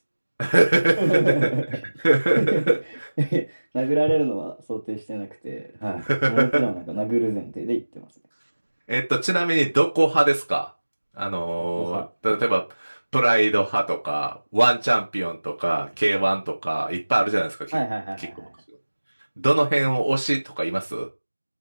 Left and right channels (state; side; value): inverted; both; correlation -1.00